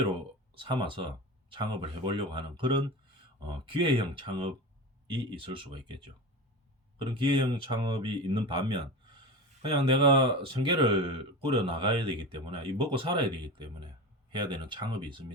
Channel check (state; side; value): normal; both; correlation 0.27